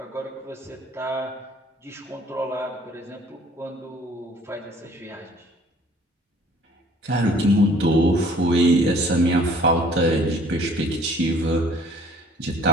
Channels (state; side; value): normal; both; correlation 0.55